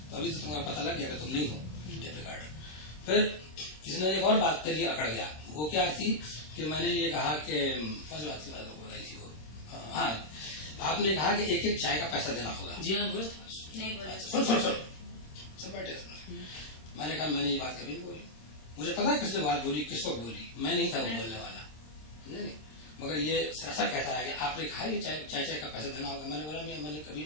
तो अभी तो तुम्हारा पता लग गया कि तुम नहीं हो टेप रिकॉर्डर। फिर किसी ने एक और बात करी, अकड़ गया, वो क्या थी कि मैंने ये कहा कि फर्स्ट बात की बात बताई थी वो, हाँ आपने कहा कि एक एक चाय का पैसा देना होगा। जी हाँ बोल सब बैठे सुन। मैंने कहा मैंने ये बात कभी नहीं बोली, मुझे पता है किसने बात बोली, किस वक्त बोली, मैं नहीं था वो बोलने वाला, नहीं मगर ये सरासर कहता है कि आपने कहा कि चाय का पैसा देना होगा। मैंने बोला मैंने कभी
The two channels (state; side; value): late; right; 26 ms